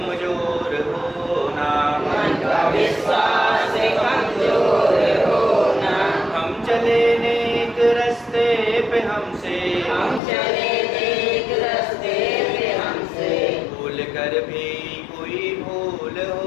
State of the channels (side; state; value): right; drops out; at 10.2 s